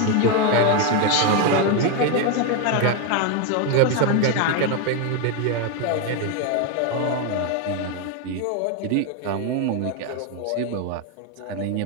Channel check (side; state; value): both; different; correlation 0.02